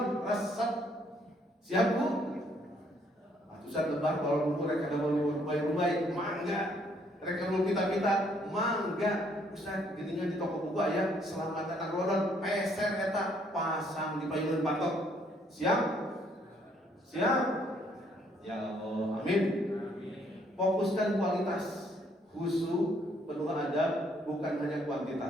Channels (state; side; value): normal; both; correlation 0.67